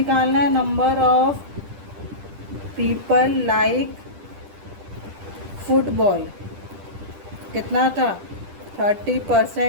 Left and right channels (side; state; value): left; late; 10 ms